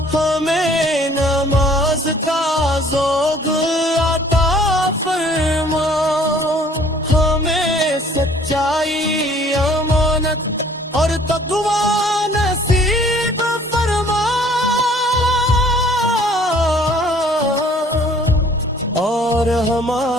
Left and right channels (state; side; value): normal; both; correlation 0.56